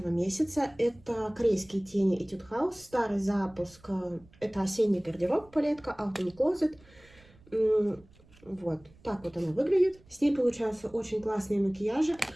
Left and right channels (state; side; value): noise; right; rumble, 27 dB below the sound